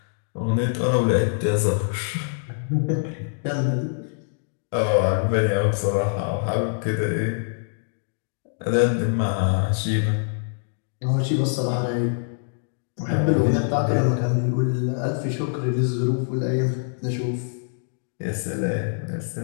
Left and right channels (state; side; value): silent; right; digital silence